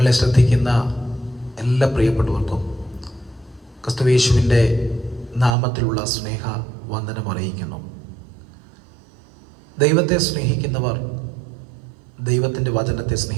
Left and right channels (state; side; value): drops out; left; at 5.5 s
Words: ശ്രദ്ധിക്കുന്ന എല്ലാ പ്രിയപ്പെട്ടവർക്കും ക്രിസ്തുയേശുവിൻ്റെ നാമത്തിലുള്ള സ്നേഹ വന്ദനം അറിയിക്കുന്നു. ദൈവത്തെ സ്നേഹിക്കുന്നവർ ദൈവത്തിൻ്റെ വചനത്തെ